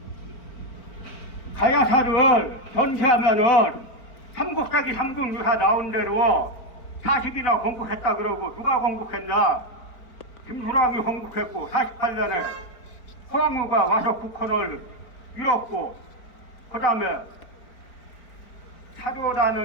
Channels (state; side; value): late; right; 4.4 ms